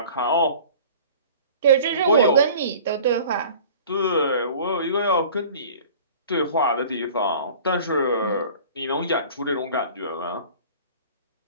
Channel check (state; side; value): inverted; both; correlation -0.45